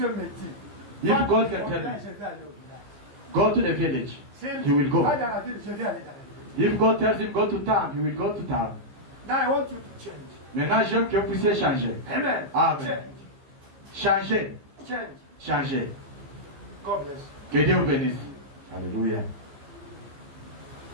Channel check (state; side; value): late; left; 15 ms